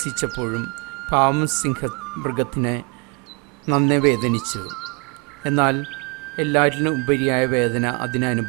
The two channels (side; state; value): left; quieter; 32.4 dB